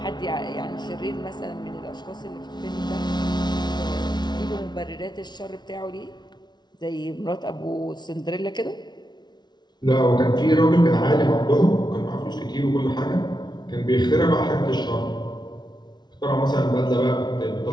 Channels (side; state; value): right; late; 0.20 ms